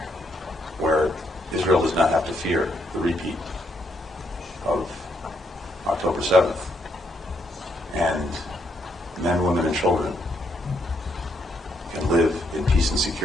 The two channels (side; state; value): both; normal; correlation 0.75